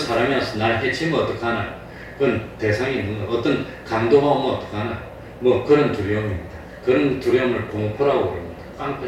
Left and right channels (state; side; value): identical; both; correlation 1.00